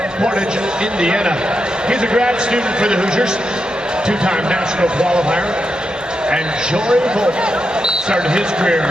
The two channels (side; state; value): both; normal; correlation 0.85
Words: Portage, Indiana. He's a grad student for the Hoosiers, 2-time national qualifier. And Jory Volk started his career